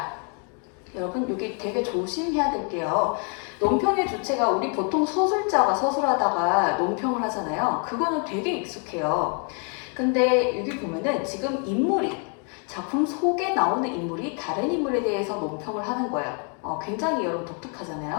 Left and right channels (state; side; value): quieter; right; 39.7 dB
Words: 여러분 여기 되게 조심해야 될게요. 논평의 주체가 우리 보통 서술자가 서술하다가 논평을 하잖아요. 그거는 되게 익숙해요. 근데 여기 보면은 지금 인물이 작품 속에 나오는 인물이 다른 인물에 대해서 논평을 하는 거예요. 굉장히 여러분